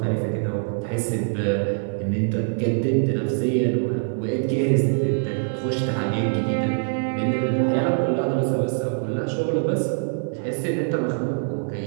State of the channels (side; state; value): left; silent; 56 dB below the other